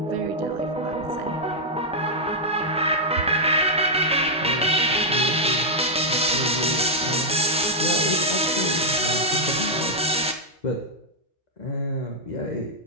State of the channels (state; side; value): normal; both; correlation -0.04